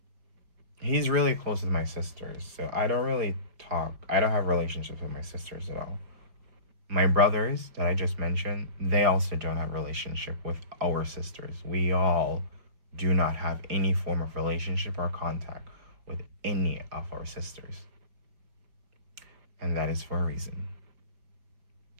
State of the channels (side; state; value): left; late; 4.9 ms